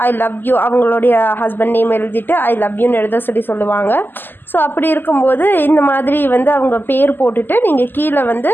ஐ லவ் யூ, அவங்களுடைய ஹஸ்பண்ட் நேம் எழுதிட்டு ஐ லவ் யூன்னு எழுத சொல்லுவாங்க. ஸோ அப்படி இருக்கும்போது இந்த மாதிரி வந்து அவங்க பேர் போட்டுட்டு நீங்கள் கீழே வந்து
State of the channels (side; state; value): right; late; 0.093 ms